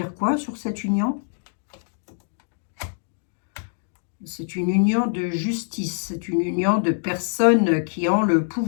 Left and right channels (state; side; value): silent; right; digital silence